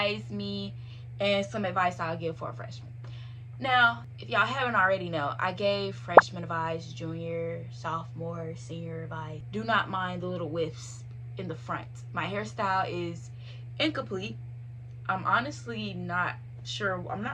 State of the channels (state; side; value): identical; both; correlation 1.00